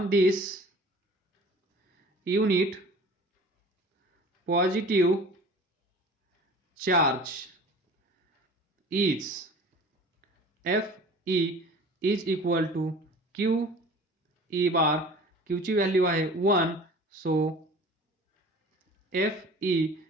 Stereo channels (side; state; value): both; normal; correlation 0.43